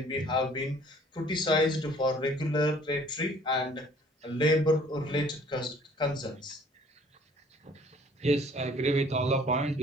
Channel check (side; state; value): both; normal; correlation 0.55